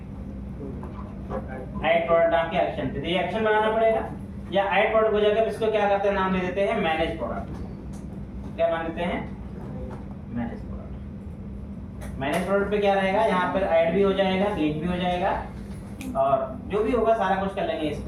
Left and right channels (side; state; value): both; identical; correlation 1.00